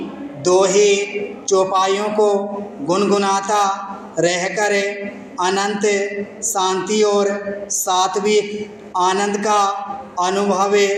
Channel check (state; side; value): identical; both; correlation 1.00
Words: दोहे चौपाइयों को गुनगुनाता रहकर अनंत शांति और सात्विक आनंद का अनुभव